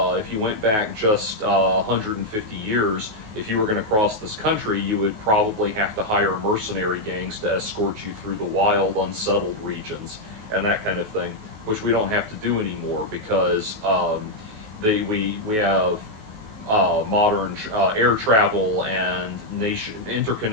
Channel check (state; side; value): late; left; 19 ms